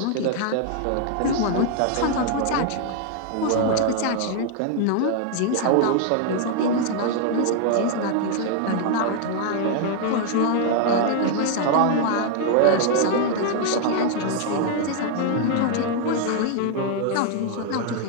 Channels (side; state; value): both; different; correlation 0.00